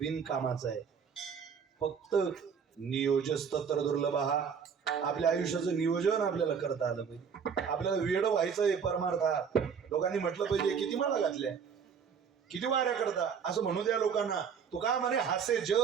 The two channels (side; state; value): left; quieter; 6.7 dB